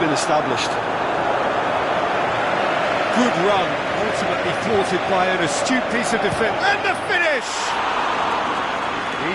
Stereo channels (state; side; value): identical; both; correlation 1.00